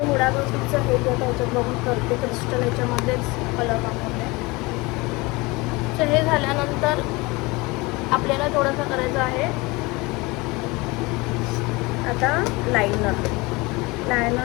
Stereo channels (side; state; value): right; quieter; 24.1 dB